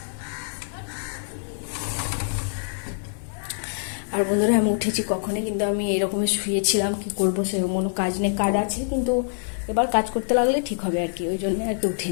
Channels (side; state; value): right; silent; digital silence